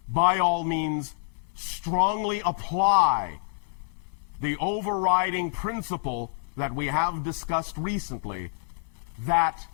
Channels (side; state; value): right; silent; 55 dB below the other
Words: by all means, strongly apply the overriding principle that we have discussed recently, that